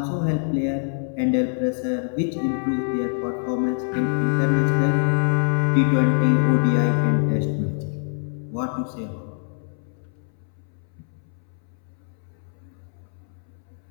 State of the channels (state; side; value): silent; right; 62 dB below the other